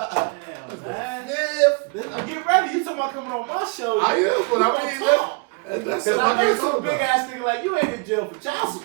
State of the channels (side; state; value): left; quieter; 31.8 dB